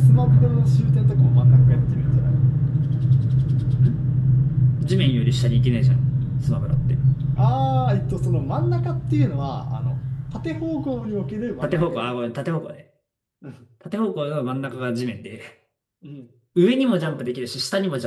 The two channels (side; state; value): both; identical; correlation 1.00